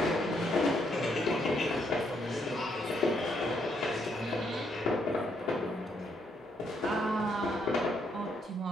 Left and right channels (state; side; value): normal; both; correlation 0.74